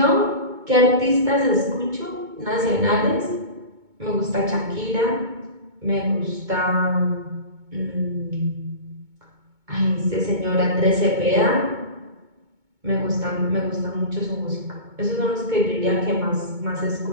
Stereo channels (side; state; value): left; late; 2.2 ms